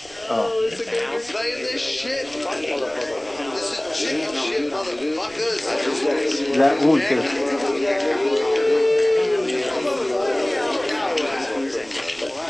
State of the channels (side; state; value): right; noise; rumble, 24 dB below the sound